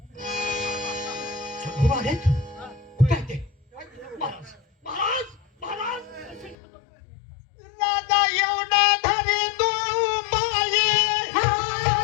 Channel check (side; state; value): right; drops out; at 6.6 s